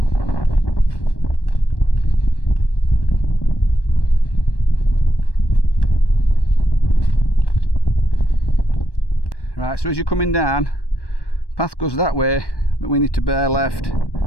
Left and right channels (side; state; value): right; late; 1.1 ms